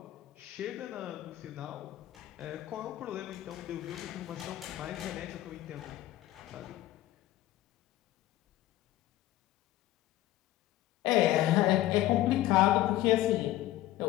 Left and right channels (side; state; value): right; quieter; 15.1 dB